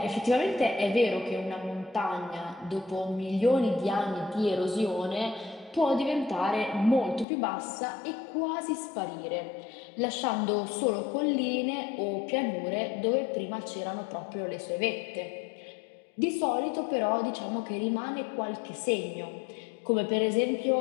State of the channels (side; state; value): right; drops out; at 7.2 s